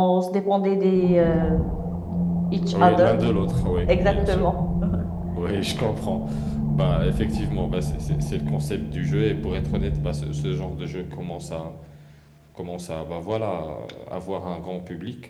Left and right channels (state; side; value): identical; both; correlation 1.00